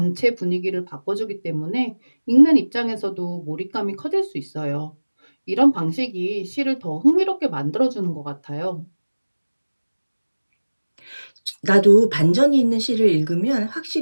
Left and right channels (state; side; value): inverted; both; correlation -1.00